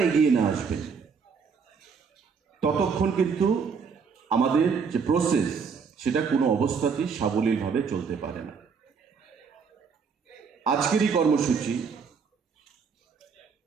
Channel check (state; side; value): quieter; left; 5.8 dB